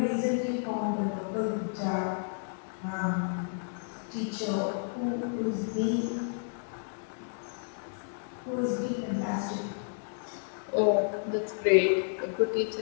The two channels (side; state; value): right; silent; digital silence